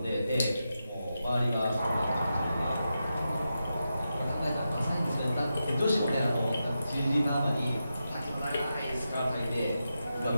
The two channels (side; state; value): both; inverted; correlation -0.89